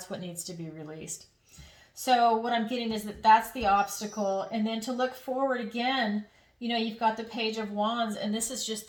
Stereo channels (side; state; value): both; identical; correlation 1.00